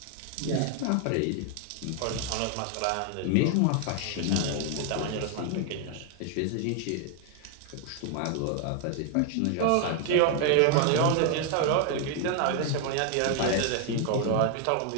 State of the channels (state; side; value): different; both; correlation 0.00